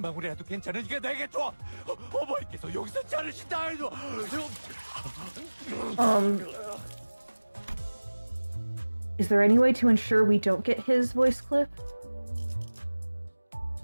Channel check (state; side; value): inverted; both; correlation -1.00